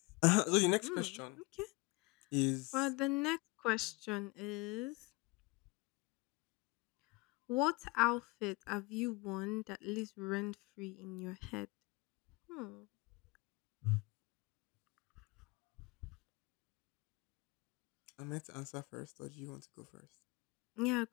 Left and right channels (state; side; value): quieter; right; 25.5 dB